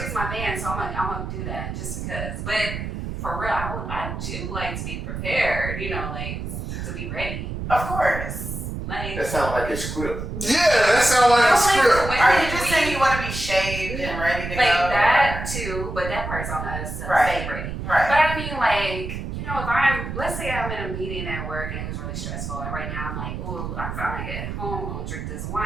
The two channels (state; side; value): noise; right; rumble, 6 dB below the sound